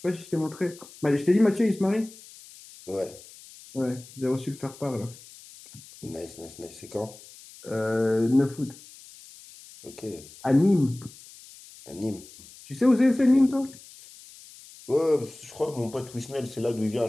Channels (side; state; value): left; noise; hiss, 20 dB below the sound